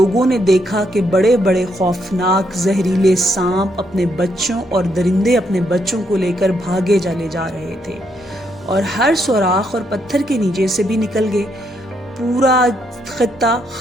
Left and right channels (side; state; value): both; normal; correlation 0.76